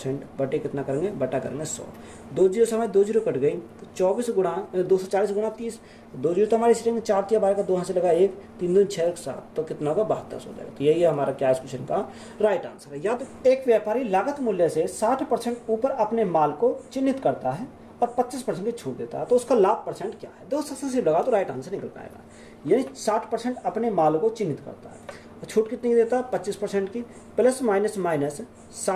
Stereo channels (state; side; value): identical; both; correlation 1.00